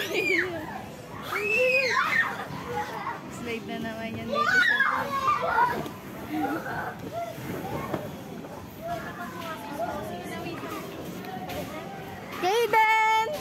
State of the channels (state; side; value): identical; both; correlation 1.00